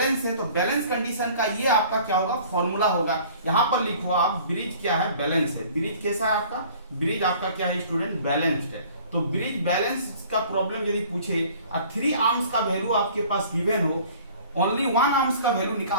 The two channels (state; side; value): inverted; both; correlation -0.50